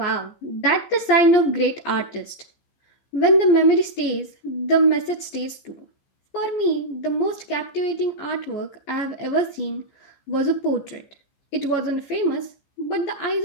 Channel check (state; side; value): late; right; 15 ms